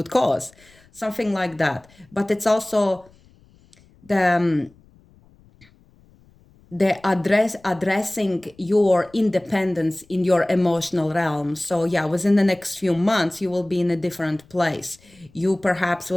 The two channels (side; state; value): left; noise; rumble, 29 dB below the sound